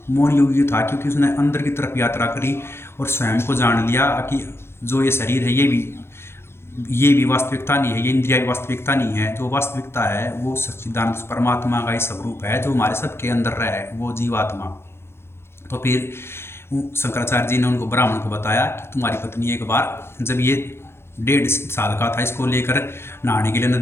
मौन योग्य था क्योंकि उसने अंदर की तरफ यात्रा करी और स्वयं को जान लिया कि जो ये शरीर है ये भी वास्तविकता नहीं है, ये इंद्रिया भी वास्तविकता नहीं है। जो वास्तविकता है वो सच्चिदानंद परमात्मा का ही स्वरूप है जो हमारे सबके अंदर रहे वो जीवात्मा। तो फिर शंकराचार्य जी ने उनको ब्राह्मण को बताया कि तुम्हारी पत्नी एक बार जब ये 1.5 साल का था इसको लेकर नहाने के लिए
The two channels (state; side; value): late; right; 0.12 ms